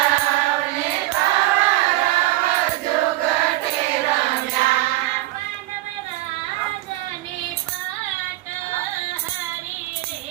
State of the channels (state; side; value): quieter; left; 17.5 dB